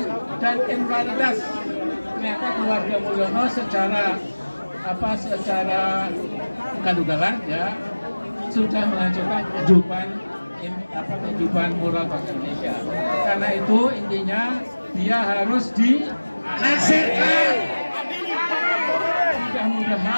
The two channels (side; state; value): both; inverted; correlation -1.00